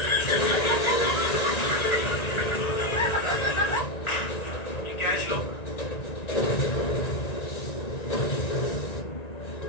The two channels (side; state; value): right; late; 1.9 ms